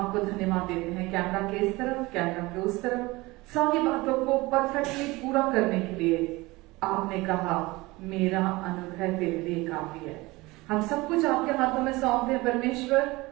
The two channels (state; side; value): quieter; left; 21.7 dB